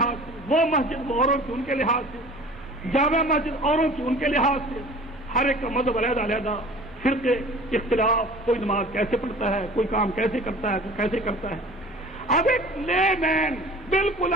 سے، وہ مسجد وہ اوروں کی ان کے لحاظ سے، جامع مسجد اوروں کی ان کے لحاظ سے، ہر ایک کا مذہب علیحدہ علیحدہ، فرقے، اختلاف، کوئی نماز کیسے پڑھتا ہے، کوئی کام کیسے کرتا ہے، کوئی کیسے کرتا ہے۔ اب ایک لے مین، بالکل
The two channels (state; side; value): normal; both; correlation 0.44